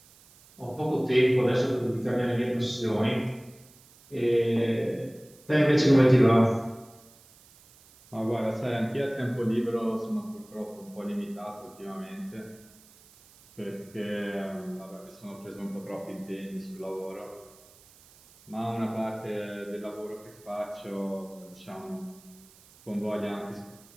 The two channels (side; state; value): right; noise; hiss, 25 dB below the sound